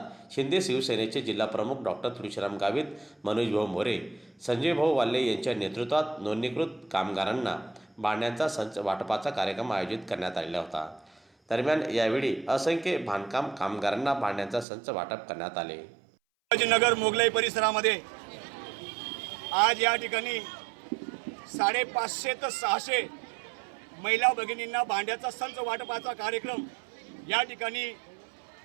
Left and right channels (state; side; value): drops out; left; at 14.7 s